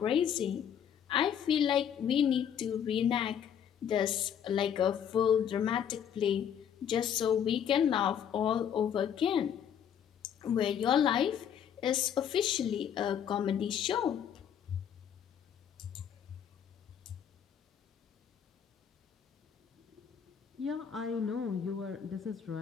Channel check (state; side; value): quieter; right; 8.6 dB